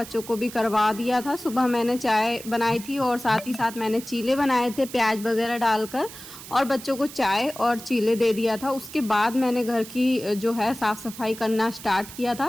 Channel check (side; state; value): right; noise; hiss, 14 dB below the sound